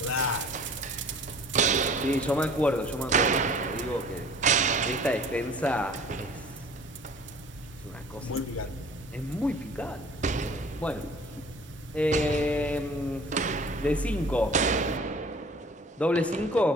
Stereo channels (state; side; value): normal; both; correlation 0.48